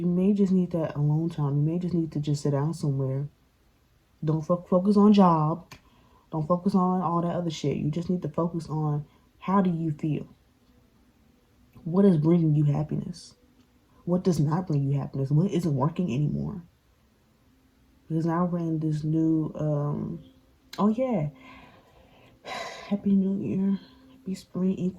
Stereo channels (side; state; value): both; identical; correlation 1.00